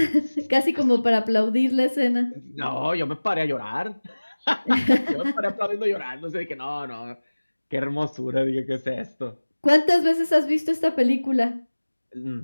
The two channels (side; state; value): both; inverted; correlation -1.00